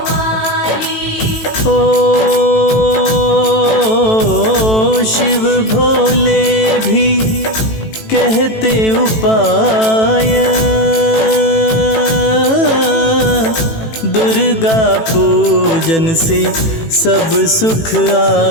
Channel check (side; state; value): right; late; 18 ms